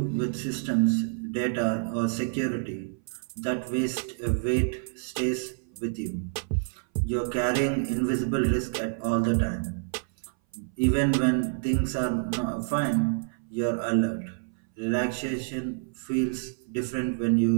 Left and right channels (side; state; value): left; silent; 59 dB below the other